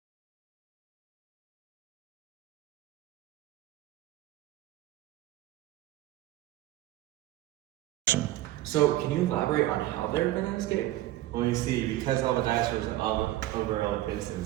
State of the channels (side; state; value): left; quieter; 15.4 dB